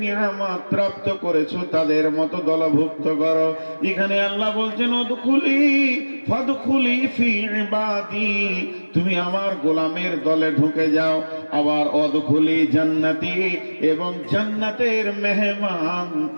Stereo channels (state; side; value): inverted; both; correlation -1.00